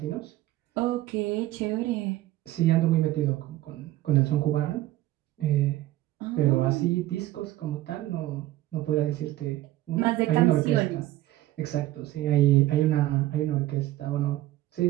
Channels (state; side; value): quieter; left; 15.5 dB